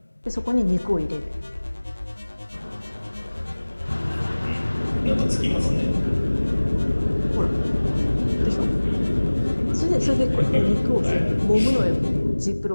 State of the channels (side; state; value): both; inverted; correlation -1.00